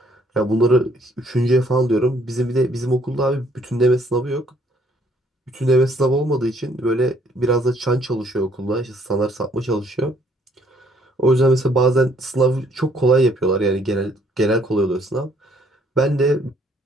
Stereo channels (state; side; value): normal; both; correlation 0.64